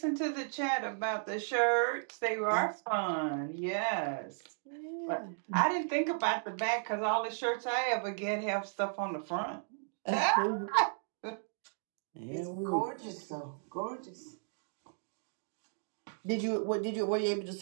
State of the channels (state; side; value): silent; left; digital silence